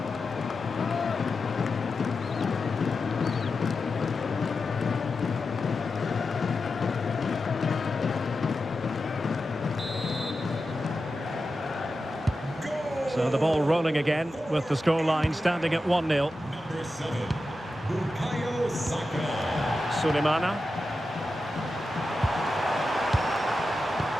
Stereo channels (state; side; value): normal; both; correlation 0.91